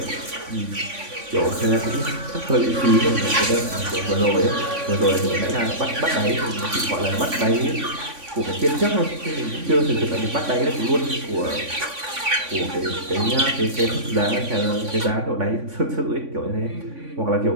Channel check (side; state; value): left; late; 3.5 ms